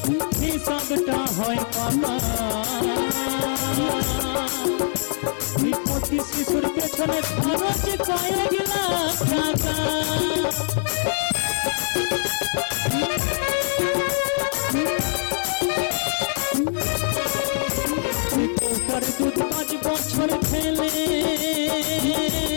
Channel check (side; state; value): right; silent; 62 dB below the other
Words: হিসাবটা হয় পাকা, প্রতি শিশুর পেছনে খরচ কয়েক লাখ টাকা। দুধ 5 বছর খেলে